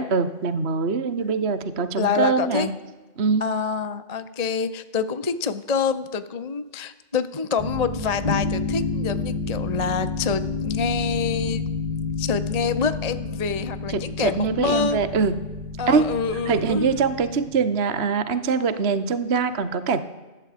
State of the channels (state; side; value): late; left; 1.9 ms